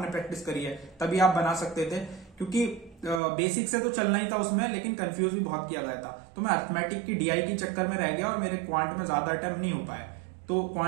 प्रैक्टिस करी है, तभी आप बना सकते थे। क्योंकि बेसिक से तो चलना ही था उसमें, लेकिन कंफ्यूज भी बहुत किया गया था। तो मैं अर्थमेटिक की डीआई के चक्कर में रह गया और मेरे क्वांट में ज्यादा अटेम्प्ट नहीं हो पाए। तो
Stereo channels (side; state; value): left; drops out; at 3.2 s